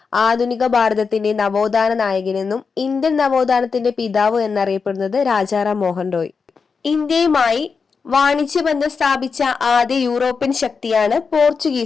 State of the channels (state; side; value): quieter; right; 5.3 dB